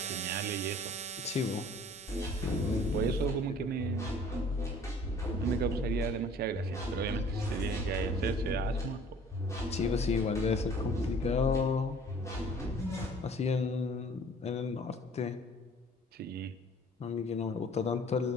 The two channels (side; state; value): both; normal; correlation 0.51